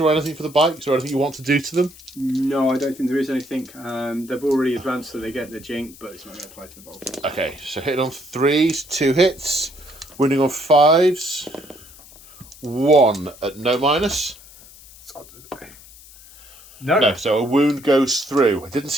or anything for the bikes, or anything you want to do to them? No, I don't think there is anything. They've already advanced, so they get the jink, but it's not going to apply to the bolters. Okay, so hitting on 3s, 2 hits. Winning on 5s. 1 at no minus. No, so a wound goes through. I didn't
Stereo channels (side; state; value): left; noise; hiss, 21 dB below the sound